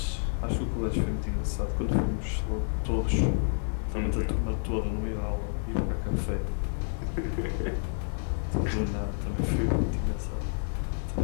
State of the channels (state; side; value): silent; right; digital silence